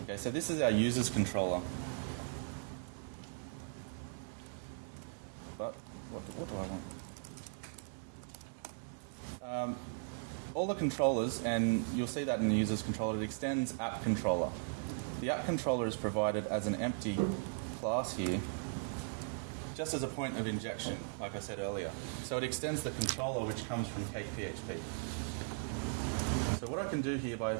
so this is our users controller. But what do I want? All the controllers, and you'll see that in the users controller, it extends app controller. The app controller is provided as an empty class here, just as a point of injection, like I said earlier. So it extends the controller which comes from CakePHP. So what I can do here by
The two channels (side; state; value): left; silent; digital silence